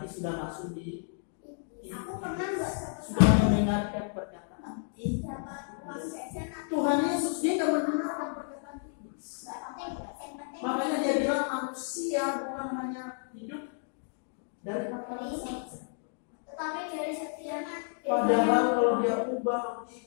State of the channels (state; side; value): silent; right; 57 dB below the other